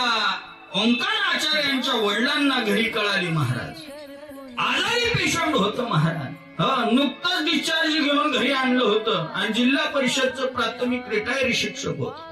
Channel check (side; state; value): both; identical; correlation 1.00